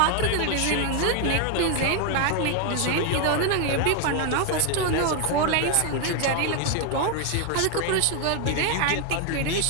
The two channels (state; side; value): different; both; correlation 0.01